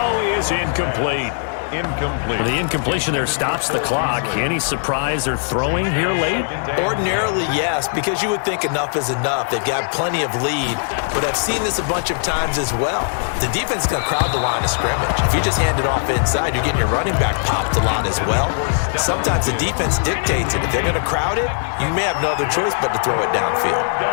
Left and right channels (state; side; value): silent; right; digital silence